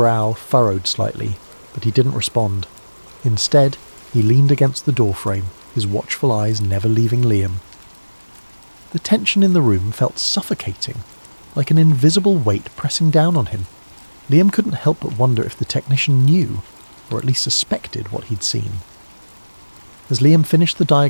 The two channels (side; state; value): both; inverted; correlation -1.00